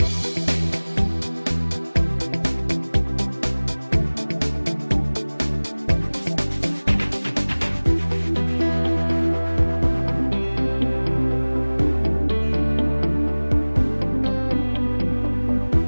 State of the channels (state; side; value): inverted; both; correlation -1.00